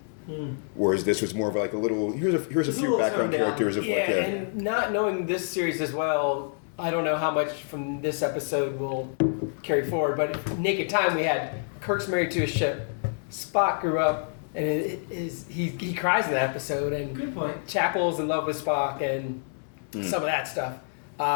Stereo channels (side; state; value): right; silent; digital silence